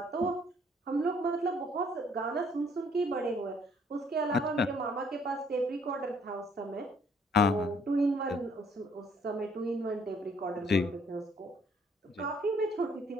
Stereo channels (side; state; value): both; normal; correlation 0.63